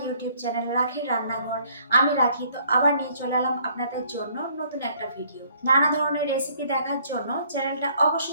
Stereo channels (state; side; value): inverted; both; correlation -0.62